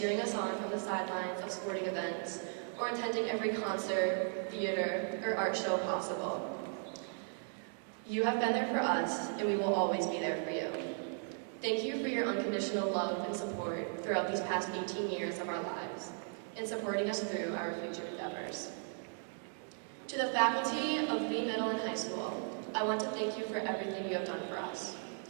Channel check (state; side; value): silent; left; 53 dB below the other